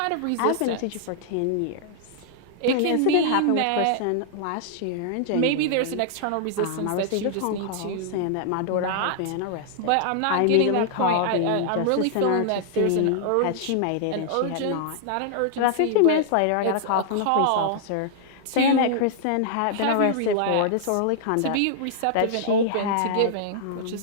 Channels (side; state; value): both; different; correlation -0.01